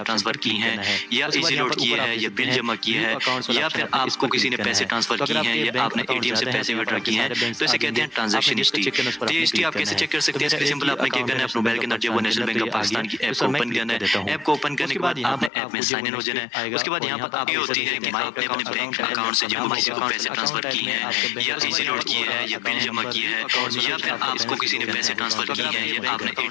ट्रांसफ़र किए हैं या इजी लोड किए हैं या बिल जमा किए हैं या फिर आपको किसी ने पैसे ट्रांसफ़र किए हैं या आपने एटीएम से पैसे विड्रॉ किए हैं, तो इसे कहते हैं ट्रांजैक्शन हिस्ट्री। तो ये हिस्ट्री आप कैसे चेक कर सकते हैं? इसके सिंपल आपने क्या करना है, अपने मोबाइल के अंदर जो वो नेशनल बैंक ऑफ पाकिस्तान की ऐप को ओपन करना है। ऐप को ओपन करने के बाद आपने ऐप में साइन इन हो जाना है। उसके बाद यहाँ पर आप ये होती है कि आपने अपने बैंक अकाउंट से जब किसी को पैसे ट्रांसफ़र किए हैं या इजी लोड किए हैं या बिल जमा किए हैं या फिर आपको किसी ने पैसे ट्रांसफ़र किए हैं या आपने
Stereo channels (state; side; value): drops out; right; at 15.5 s